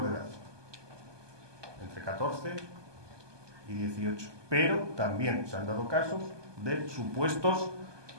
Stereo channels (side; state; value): left; late; 1.2 ms